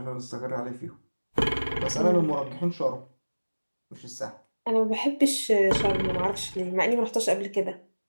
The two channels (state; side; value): inverted; both; correlation -1.00